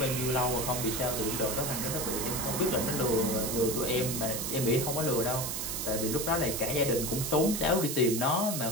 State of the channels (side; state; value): right; noise; hiss, 3 dB below the sound